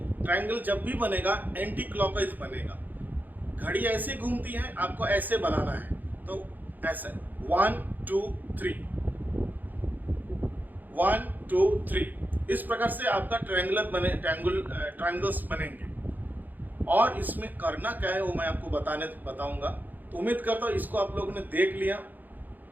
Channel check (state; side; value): late; left; 0.085 ms